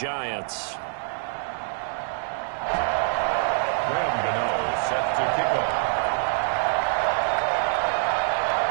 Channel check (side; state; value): left; silent; 58 dB below the other